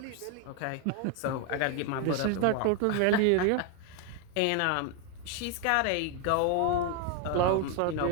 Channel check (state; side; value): different; both; correlation 0.01